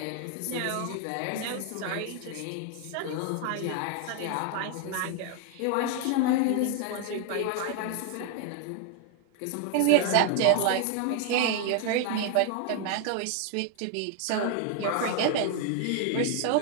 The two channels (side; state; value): both; different; correlation 0.00